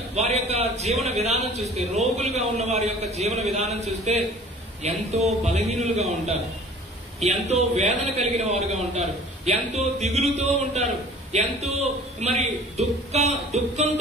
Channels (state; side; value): normal; both; correlation 0.47